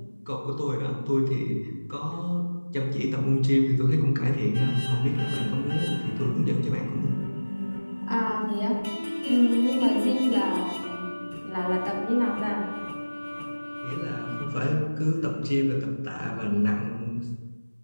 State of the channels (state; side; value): inverted; both; correlation -1.00